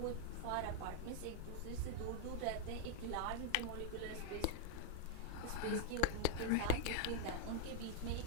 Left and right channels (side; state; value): both; different; correlation 0.00